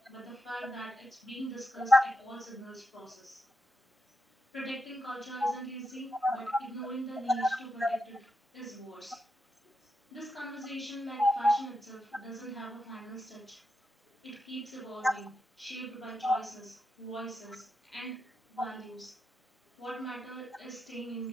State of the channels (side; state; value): both; normal; correlation 0.85